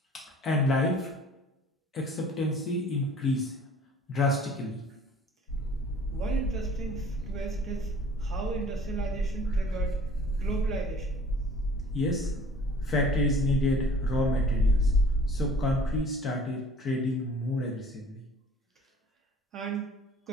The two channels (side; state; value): both; normal; correlation 0.51